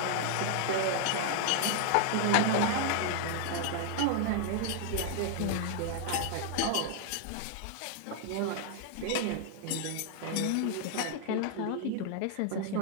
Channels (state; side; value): different; both; correlation 0.00